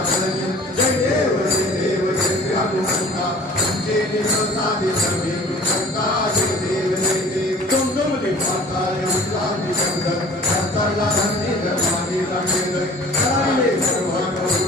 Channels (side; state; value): both; normal; correlation 0.47